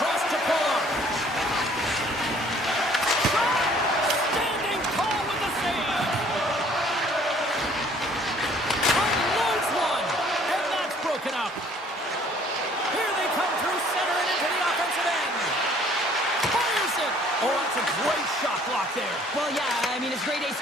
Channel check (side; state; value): both; normal; correlation 0.58